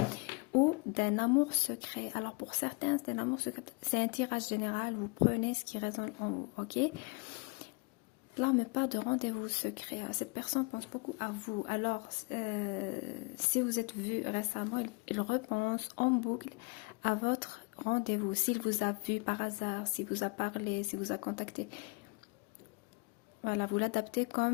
ou d'un amour secret. Alors pour certains, c'est un amour secret. C'est un tirage général, vous prenez ce qui résonne en vous, ok? Là, on me parle de rendez-vous secret. Cette personne pense beaucoup à vous. Alors, si vous êtes vu récemment, il repense en boucle à votre rendez-vous. S'il vous a vu par hasard, s'il vous a parlé, s'il vous a contacté. Voilà, vous l'adaptez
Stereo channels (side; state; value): right; quieter; 30.5 dB